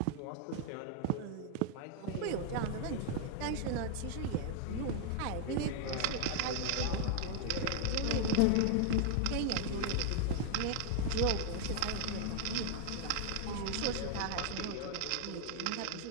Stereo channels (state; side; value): different; both; correlation 0.00